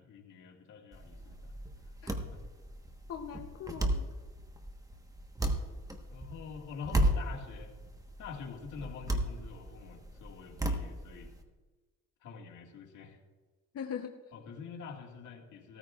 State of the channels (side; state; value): both; normal; correlation 0.54